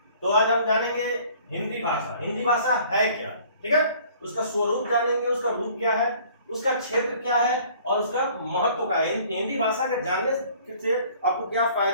तो आज हम जानेंगे हिंदी भाषा। हिंदी भाषा है क्या, ठीक है, उसका स्वरूप जानेंगे, उसका रूप क्या है, उसका क्षेत्र क्या है और उसका महत्व क्या है। हिंदी भाषा के जानने से आपको क्या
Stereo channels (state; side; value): inverted; both; correlation -0.54